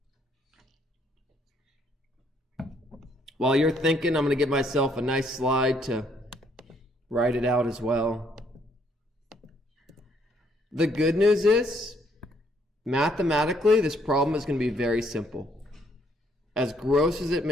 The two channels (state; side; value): normal; both; correlation 0.68